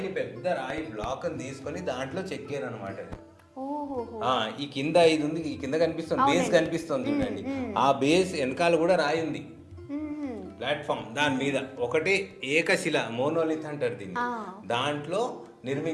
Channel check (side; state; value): both; identical; correlation 1.00